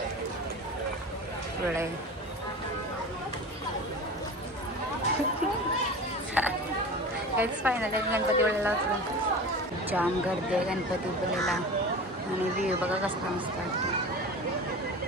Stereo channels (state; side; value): normal; both; correlation 0.33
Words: पुळे. फायनली गणपतीपुळेला उतरलो. जाम गर्दी आहे गणपतीपुळेला आणि व्ह्यू बघा कसला मस्त वाटतो.